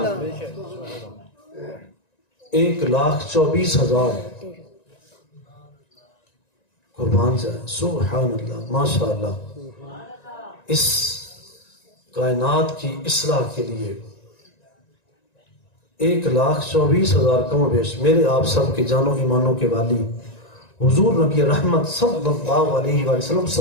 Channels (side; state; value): right; late; 1.9 ms